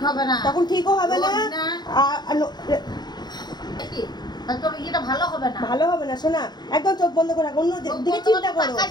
হবে না, তখন ঠিকও হবে না। রোগ না। আর তাহলে তোর এটা ভালো হবে না। ভালো হবে না। শোনা, একদম চোখ বন্ধ করে রাখো, অন্য চোখ দিকে বন্ধ চিন্তা করে করো,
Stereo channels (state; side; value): late; right; 0.20 ms